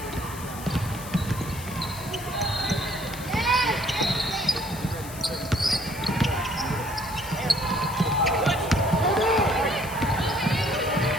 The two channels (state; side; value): noise; left; hiss, 14 dB below the sound